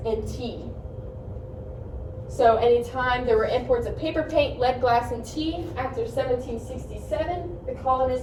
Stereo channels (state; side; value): identical; both; correlation 1.00